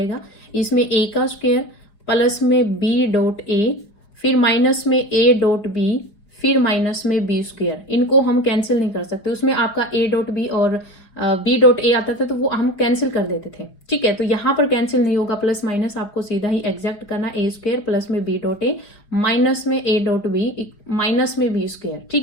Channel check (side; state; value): right; late; 4.9 ms